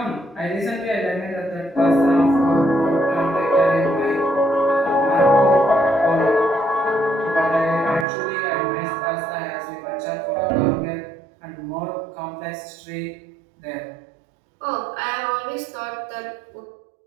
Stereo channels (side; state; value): left; drops out; at 8.1 s